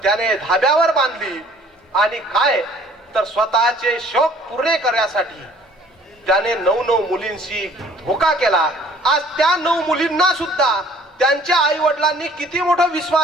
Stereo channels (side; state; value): both; normal; correlation 0.55